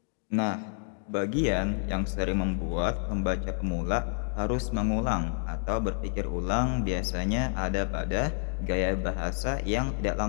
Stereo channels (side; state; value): right; silent; digital silence